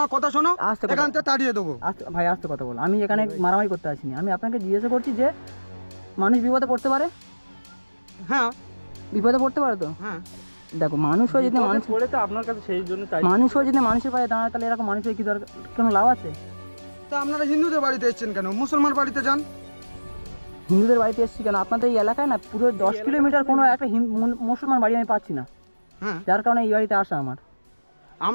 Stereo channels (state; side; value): inverted; both; correlation -1.00